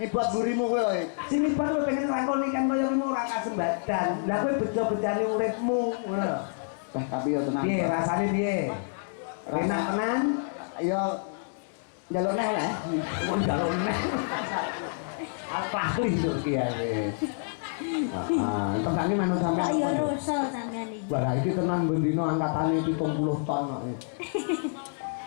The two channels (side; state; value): right; silent; digital silence